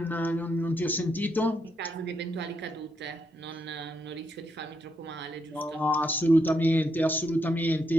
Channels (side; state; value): both; normal; correlation 0.79